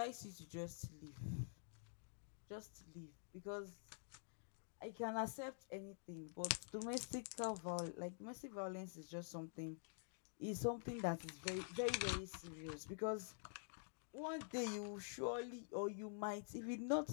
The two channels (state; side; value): silent; right; digital silence